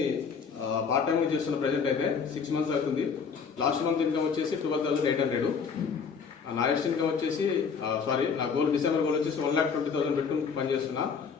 పార్ట్ టైంగా చేస్తున్న ప్రెజెంట్ అయితే 6 months అవుతుంది. లాస్ట్ మంత్ ఇన్కమ్ వచ్చేసి 12,800. నా నెక్స్ట్ ఇన్కమ్ వచ్చేసి నా గోల్ డిసెంబర్ గోల్ వచ్చేసి 1,20,000 పెట్టుకుని పనిచేస్తున్నా.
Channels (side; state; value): right; quieter; 6.0 dB